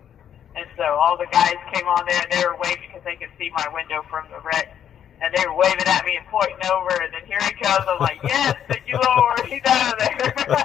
And so all the guys came on there, and they were waving because they could see my window from the wreck. And they were waving at me and pointing over, and then here he comes. I'm like, yes, thank you, Lord, he's out of there.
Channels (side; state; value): right; quieter; 9.4 dB